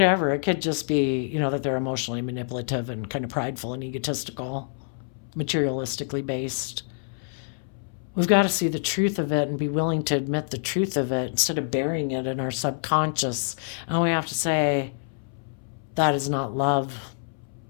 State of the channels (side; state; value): right; silent; 61 dB below the other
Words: it could just be, you know, that they're emotionally manipulative and kind of prideful and egotistical, materialistically based. We've got to see the truth of it and be willing to admit the truth of it instead of burying it in our subconscious. And we have to say, that is not love.